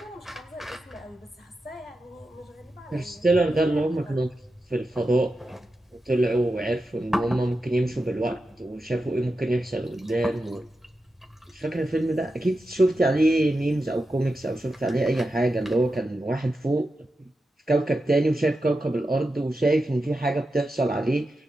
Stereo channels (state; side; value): normal; both; correlation 0.90